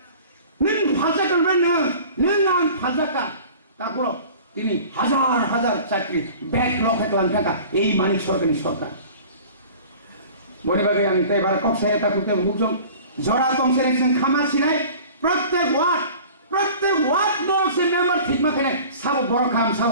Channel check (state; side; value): inverted; both; correlation -0.43